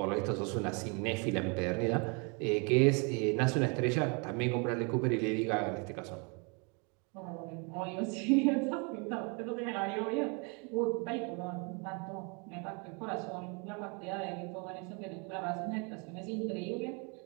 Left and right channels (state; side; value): quieter; left; 33.6 dB